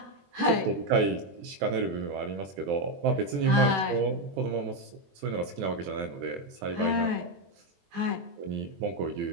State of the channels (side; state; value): left; late; 21 ms